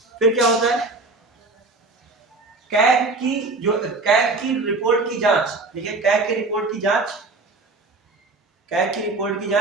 फिर क्या होता है? कैग की रिपोर्ट की जांच, देखिए कैग की रिपोर्ट की जांच, कैग की रिपोर्ट की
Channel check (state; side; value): quieter; left; 3.4 dB